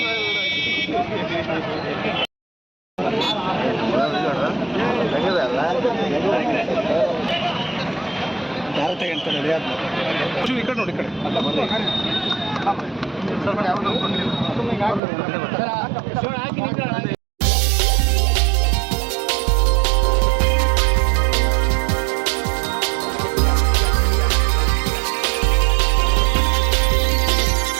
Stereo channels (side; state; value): left; drops out; at 15.0 s